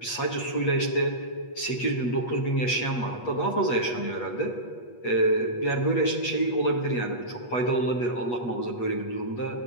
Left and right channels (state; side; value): late; right; 8.3 ms